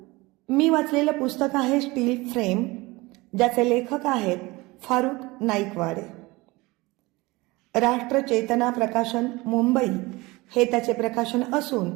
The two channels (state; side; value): quieter; left; 22.3 dB